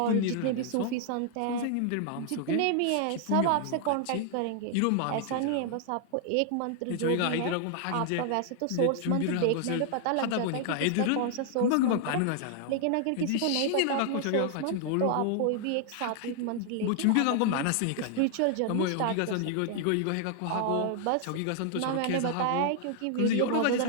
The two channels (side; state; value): both; different; correlation 0.00